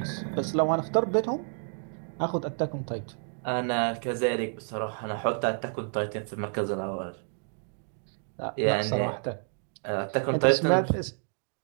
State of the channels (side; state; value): left; silent; 55 dB below the other